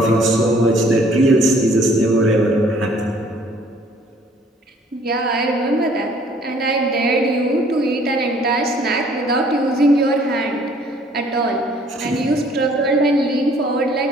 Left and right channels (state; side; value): normal; both; correlation 0.58